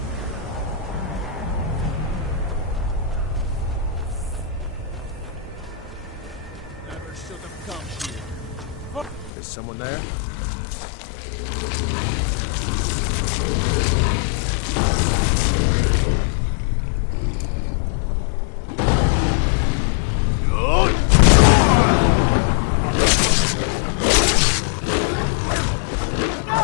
Is someone there?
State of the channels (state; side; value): drops out; right; at 9.3 s